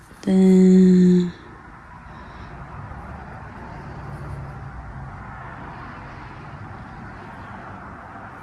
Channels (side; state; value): both; identical; correlation 1.00